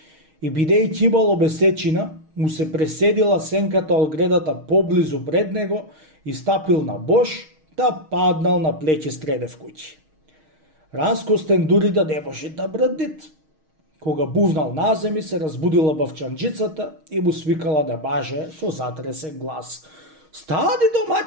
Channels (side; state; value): left; late; 6.4 ms